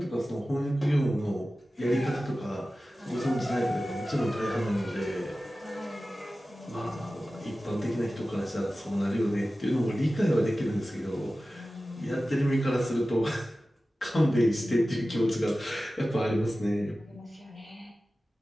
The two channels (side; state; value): both; normal; correlation 0.95